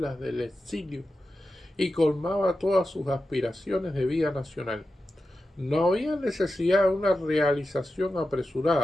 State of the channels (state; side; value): normal; both; correlation 0.91